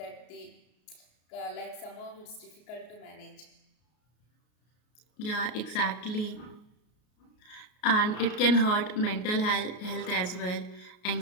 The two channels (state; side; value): late; right; 33 ms